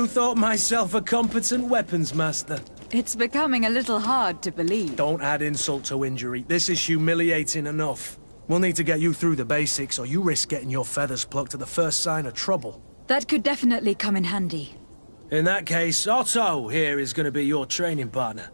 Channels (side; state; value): both; inverted; correlation -1.00